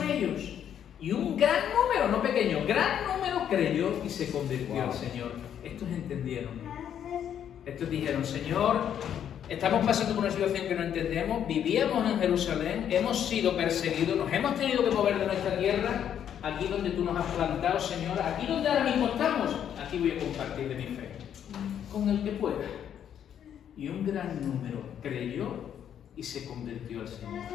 ellos. Y un gran número, no pequeño, gran número creyó y se convirtió al Señor. Estos entendieron. Estos dijeron, Señor, estamos pasando por una situación que no entendemos, vivíamos en Jerusalén, hemos sido perseguidos, nos hemos tenido que mover de nuestra tierra, aquí donde tú nos has plantado, Señor, aquí donde ahora mismo estamos, aquí voy a compartir de mi fe, con el que pueda. Y un gran número creyó y se convirtió al Señor.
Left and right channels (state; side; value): quieter; right; 9.4 dB